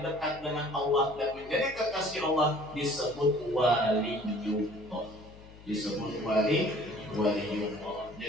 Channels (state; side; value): noise; left; hum, 20 dB below the sound